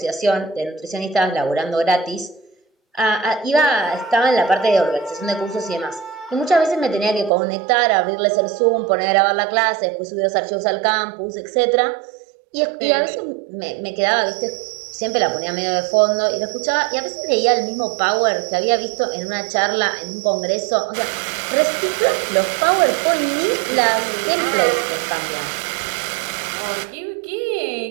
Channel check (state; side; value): drops out; left; at 7.3 s